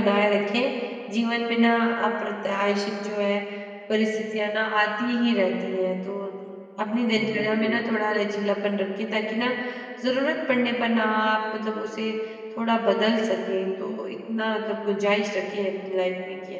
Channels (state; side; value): identical; both; correlation 1.00